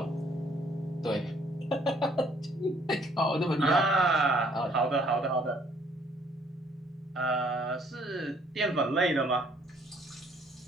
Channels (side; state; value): both; normal; correlation 0.62